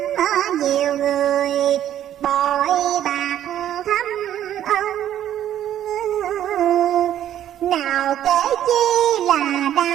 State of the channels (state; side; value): quieter; left; 11.2 dB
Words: nhiều người bội bạc thâm ân. Nào kể chi là